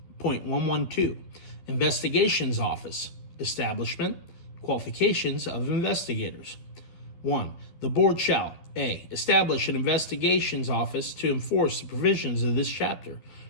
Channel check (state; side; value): late; right; 12 ms